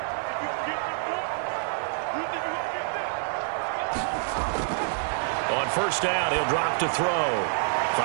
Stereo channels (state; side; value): silent; left; 60 dB below the other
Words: On first down, he'll drop to throw.